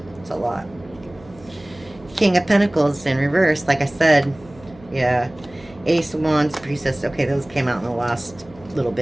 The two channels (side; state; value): right; noise; hum, 23 dB below the sound